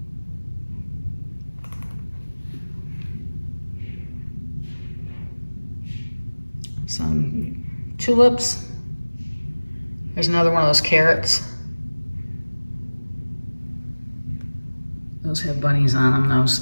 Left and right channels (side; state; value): both; inverted; correlation -1.00